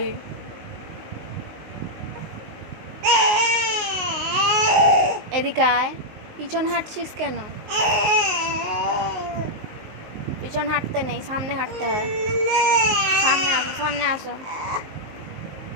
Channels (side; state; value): left; late; 19 ms